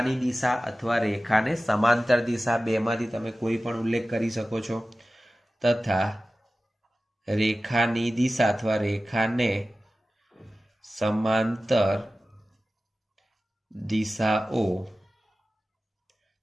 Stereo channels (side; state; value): both; normal; correlation 0.95